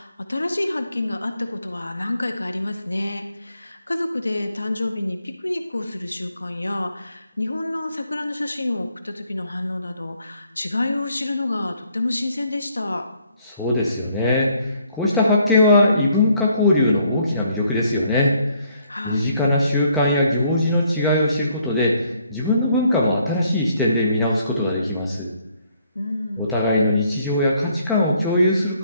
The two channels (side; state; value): both; inverted; correlation -0.67